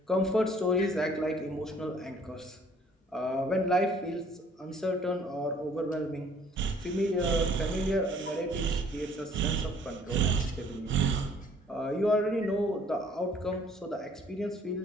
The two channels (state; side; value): normal; both; correlation 0.58